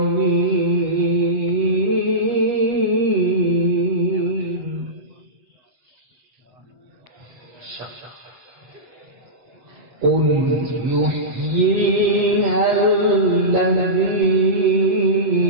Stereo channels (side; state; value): left; late; 8.1 ms